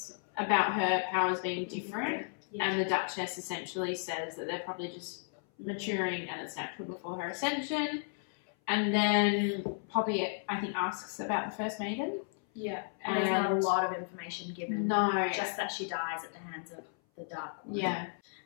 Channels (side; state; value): right; silent; 55 dB below the other